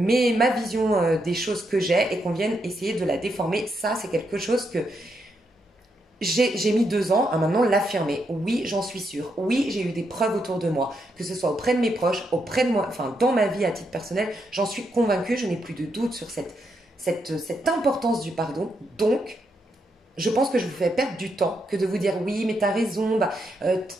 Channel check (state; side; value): normal; both; correlation 0.80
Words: vision des choses que j'ai et qu'on vienne essayer de la déformer. Ça, c'est quelque chose que j'ai mis 2 ans à maintenant l'affirmer. Oui, j'en suis sûre. Oui, j'ai eu des preuves autour de moi, que ce soit auprès de mes proches, auprès de moi, enfin dans ma vie à titre personnel. J'en suis convaincue, je n'ai plus de doute sur cette importance du pardon. Donc, je pense que je vous fais perdre du temps que de vous dire oui, mais t'as raison,